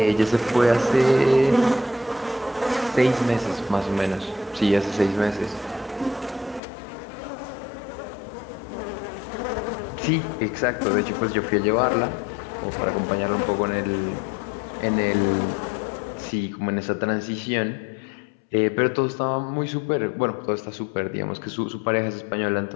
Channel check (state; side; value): drops out; right; at 6.6 s